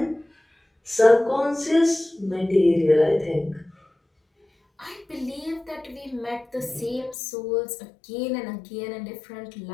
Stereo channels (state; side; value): drops out; right; at 7.2 s